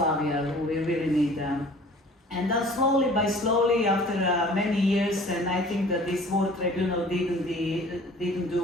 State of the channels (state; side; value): normal; both; correlation 0.49